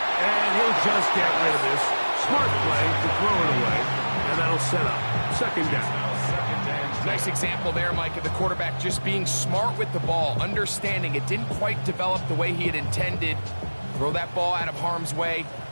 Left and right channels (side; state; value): both; inverted; correlation -1.00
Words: And he'll just get rid of this. Smart play to throw it away. And that'll set up second down. Nice example there, Mike, of the quarterback just being smart with the ball, understanding it didn't quite develop the way he had intended. Throw that ball out of harm's way,